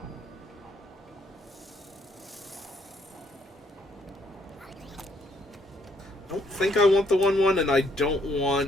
I don't think I want the 1/1, and I don't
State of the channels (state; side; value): normal; both; correlation 0.70